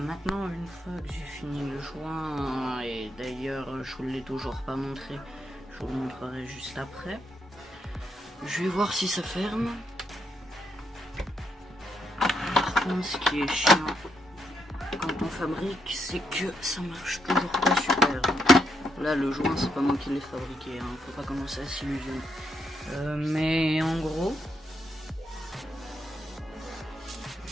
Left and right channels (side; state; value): both; normal; correlation 0.78